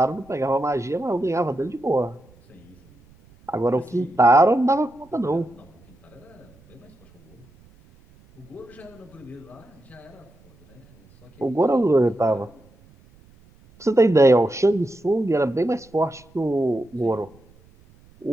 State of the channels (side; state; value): right; noise; rumble, 28 dB below the sound